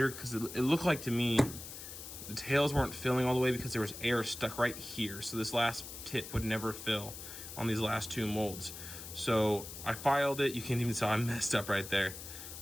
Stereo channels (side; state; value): left; noise; hiss, 11 dB below the sound